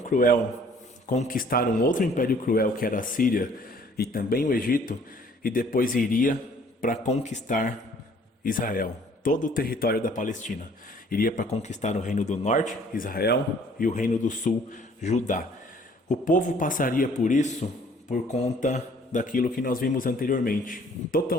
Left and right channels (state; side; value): normal; both; correlation 0.57